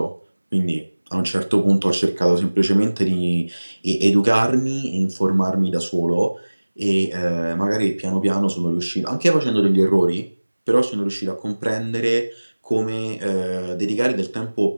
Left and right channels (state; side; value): inverted; both; correlation -1.00